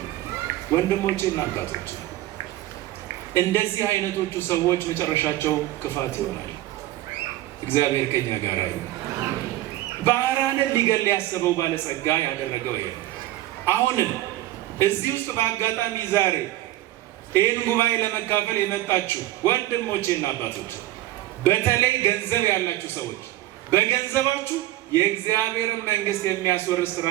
ወንድሞቼና አባቶቼ እንደዚህ አይነቶቹ ሰዎች መጨረሻቸው ክፋት ይሆናል። እግዚአብሔር ከኛ ጋር ይሁን። ባህራንን ሊገል ያሰበው ባለጸጋ ያደረገው ይሄ። አሁንም እዚህ ውስጥ በአጋጣሚ ዛሬ ይህን ጉባኤ ለመካፈል የመጣችሁ ወንድሞቼና አባቶች፣ በተለይ ገንዘብ ያላችሁ ሰዎች በገንዘባችሁ የእግዚአብሔርን መንግስት የሚያስወርስ ስራ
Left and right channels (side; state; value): left; quieter; 15.5 dB